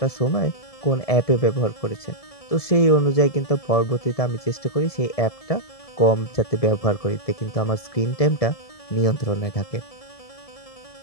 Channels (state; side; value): late; right; 1.7 ms